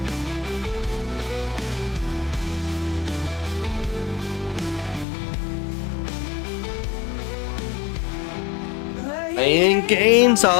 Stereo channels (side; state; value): right; drops out; at 5.1 s